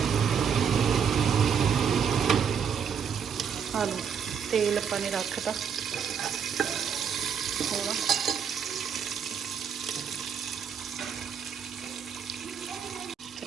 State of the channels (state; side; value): quieter; left; 7.3 dB